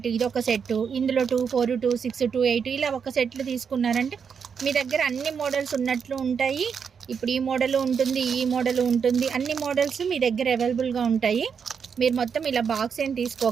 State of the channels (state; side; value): quieter; left; 6.6 dB